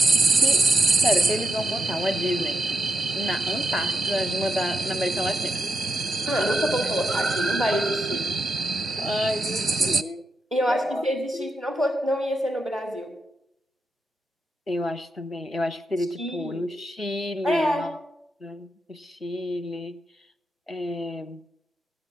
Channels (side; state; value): both; normal; correlation 0.82